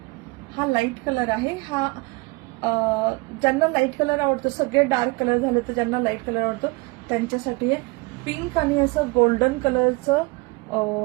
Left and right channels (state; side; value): quieter; left; 25.6 dB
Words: हा लाईट कलर आहे. हा ज्यांना लाईट कलर आवडतो, सगळे डार्क कलर झाले तर ज्यांना लाईट कलर आवडतो त्यांच्यासाठी हे पिंक आणि असं गोल्डन कलरचं